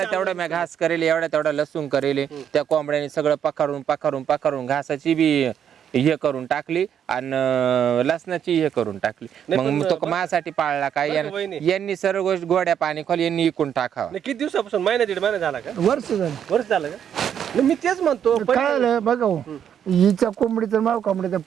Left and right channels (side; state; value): left; quieter; 8.9 dB